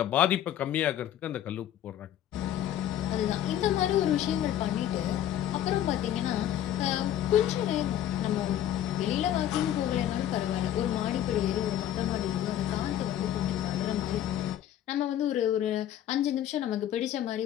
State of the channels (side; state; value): right; quieter; 11.4 dB